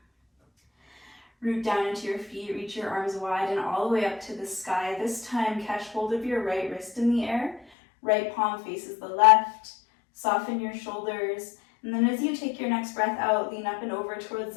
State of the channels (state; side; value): drops out; right; at 7.7 s